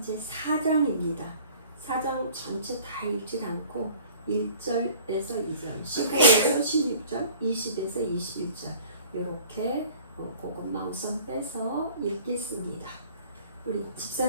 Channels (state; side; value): inverted; both; correlation -0.48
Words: 4장 전체 다 읽지 않고 1절에서 2절, 15에서 16절, 20에서 21절 이렇게 그것만 우선 빼서 읽겠습니다. 우리